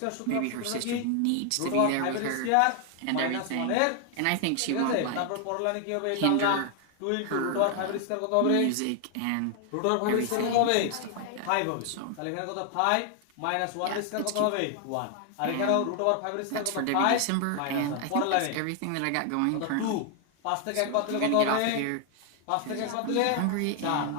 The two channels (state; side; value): different; both; correlation 0.00